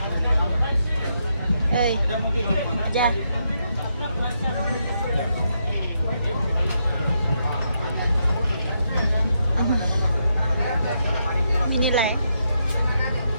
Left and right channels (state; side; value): inverted; both; correlation -0.80